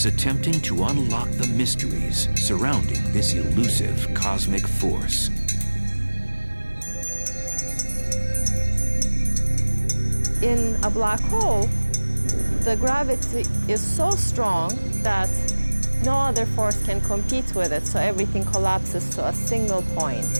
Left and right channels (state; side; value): inverted; both; correlation -1.00